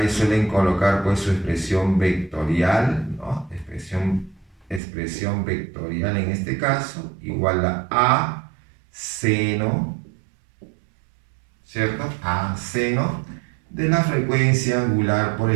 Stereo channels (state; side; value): drops out; left; at 4.8 s